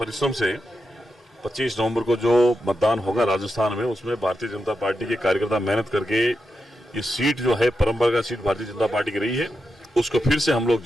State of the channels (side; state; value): both; normal; correlation 0.88